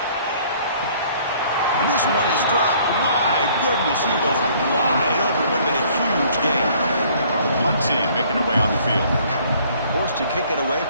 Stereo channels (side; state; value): both; inverted; correlation -0.58